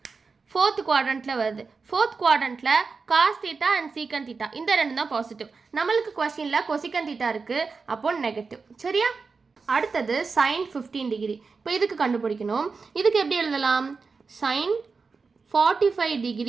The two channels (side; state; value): left; quieter; 4.7 dB